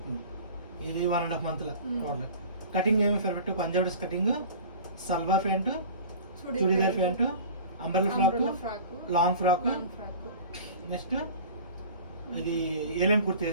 ఇది 1.5 months టోటల్. కటింగ్ ఏమి perfect Punjab dress cutting, salwar pant, churidar pant, umbrella frock, long frock. Next ఇది ఏలైన్ కుర్తి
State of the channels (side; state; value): both; inverted; correlation -0.41